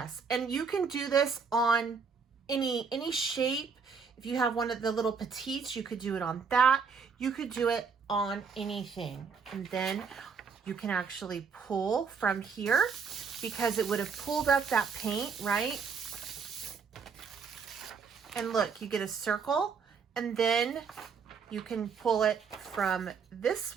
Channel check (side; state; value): left; quieter; 5.7 dB